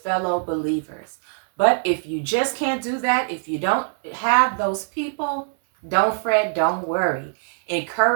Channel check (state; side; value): silent; left; digital silence